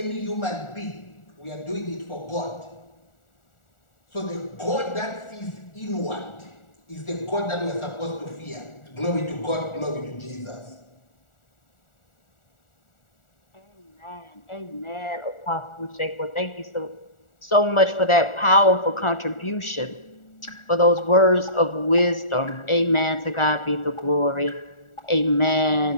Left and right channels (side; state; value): right; late; 1.4 ms